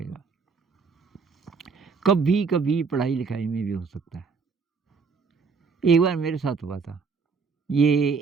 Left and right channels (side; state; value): left; quieter; 5.1 dB